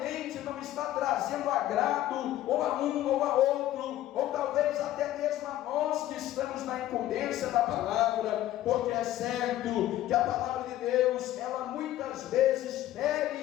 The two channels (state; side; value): quieter; right; 13.9 dB